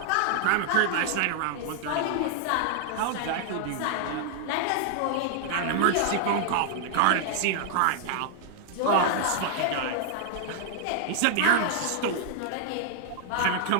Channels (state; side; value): different; both; correlation 0.00